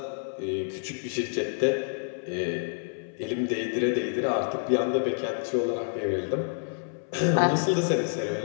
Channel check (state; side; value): silent; right; 59 dB below the other